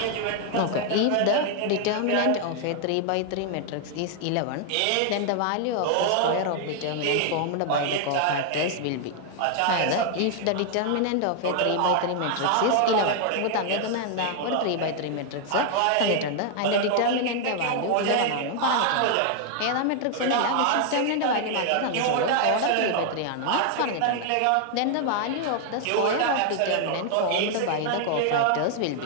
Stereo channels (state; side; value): different; both; correlation 0.00